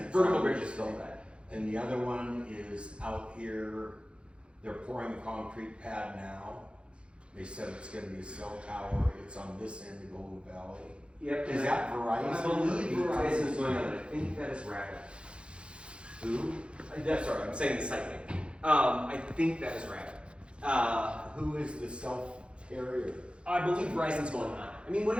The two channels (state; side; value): late; left; 0.058 ms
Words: it's vertical on bridge this is still thing. that. And the other one is out here. They're pouring a concrete pad now. They said it's gonna be a cell tower. It's on this end of Golden Valley. Yep. Is that Verizon? I believe Verizon is going on it. I think that is Rapid. Who? That's sorry, I'm saying the site name. I think that is Rapid. Who is the cell carrier? I believe Verizon's going on. I mean,